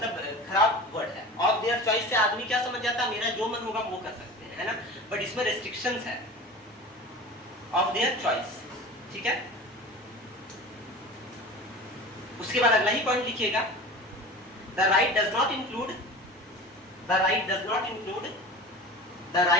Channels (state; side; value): normal; both; correlation 0.35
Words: खराब word है, of their choice से आदमी क्या समझ जाता है मेरा जो मन होगा वो कर सकते हैं, है ना, बट इसमें रेस्ट्रिक्शंस है, ऑफ देयर चॉइस, ठीक है। उसके बाद अगला ही पॉइंट लिखिएगा, the right does not include the right